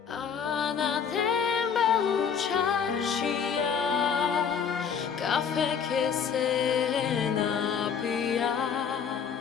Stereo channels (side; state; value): right; quieter; 7.0 dB